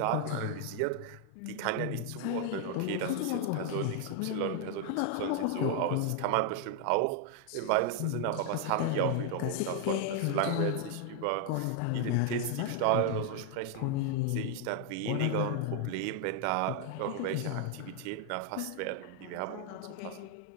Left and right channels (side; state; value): both; different; correlation 0.00